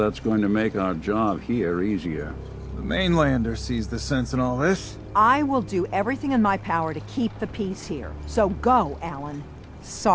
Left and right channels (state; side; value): identical; both; correlation 1.00